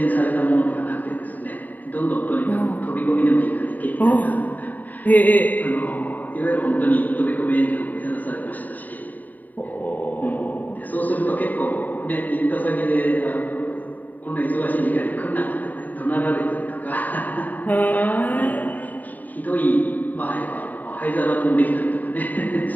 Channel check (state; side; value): late; right; 0.083 ms